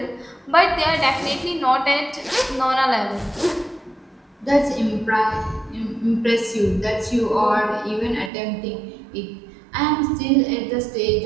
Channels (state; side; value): drops out; left; at 8.3 s